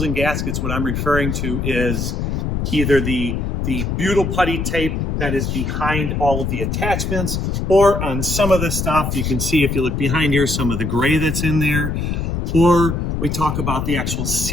and gaskets, what I'm referring to is either the butyl putty tape that is behind all of the attachments, or on some of the stuff, you can see if you look behind here, some of the gray that's in there, or we talk about the actual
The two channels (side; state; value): left; noise; rumble, 1 dB below the sound